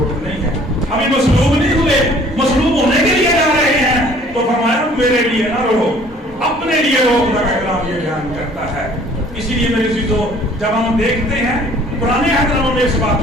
نہیں ہے۔ ابھی مصلوب نہیں ہوئے، مصلوب ہونے کے لیے جا رہے ہیں تو فرمایا میرے لیے نہ رو، اپنے لیے رو۔ خدا کا کلام یہ بیان کرتا ہے۔ اسی لیے میرے عزیزوں، جب ہم دیکھتے ہیں پرانے عہد میں اس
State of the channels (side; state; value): both; normal; correlation 0.55